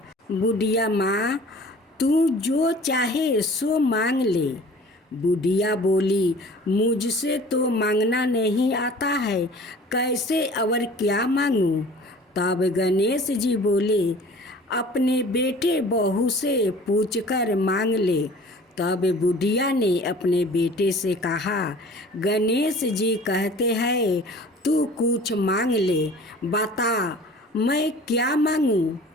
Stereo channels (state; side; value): normal; both; correlation 0.46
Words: बुढ़िया माँ, तू जो चाहे सो मांग ले। बुढ़िया बोली, मुझसे तो मांगना नहीं आता है, कैसे और क्या मांगूं? तब गणेश जी बोले, अपने बेटे बहू से पूछकर मांग ले। तब बुढ़िया ने अपने बेटे से कहा, गणेश जी कहते हैं तू कुछ मांग ले, बता मैं क्या मांगूं?